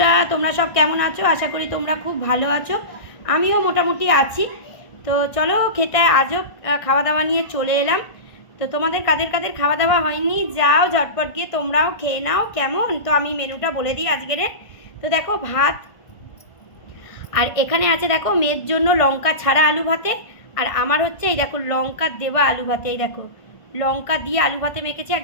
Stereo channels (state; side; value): late; right; 1.6 ms